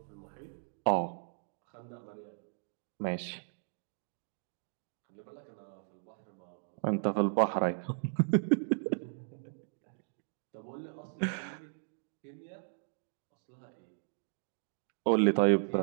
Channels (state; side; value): silent; left; digital silence